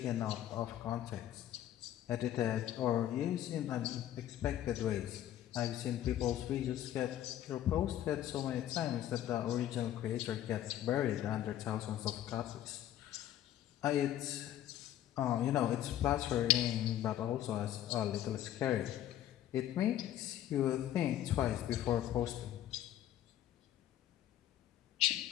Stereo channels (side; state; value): right; quieter; 12.0 dB